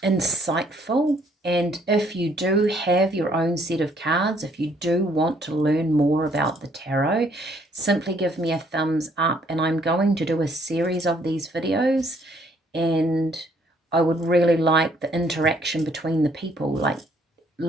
insightful, and if you do have your own set of cards, if you do want to learn more about the tarot, simply give me a thumbs up, and I'm going to do a series of these videos, and I would really like the interaction between the people. Like,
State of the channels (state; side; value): normal; both; correlation 0.65